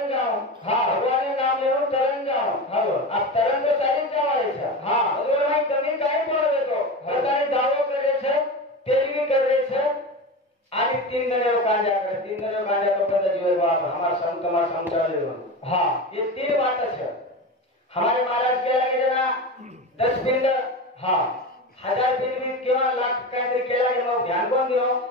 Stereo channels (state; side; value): normal; both; correlation 0.25